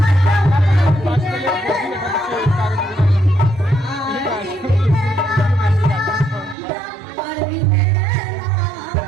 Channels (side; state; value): left; drops out; at 6.6 s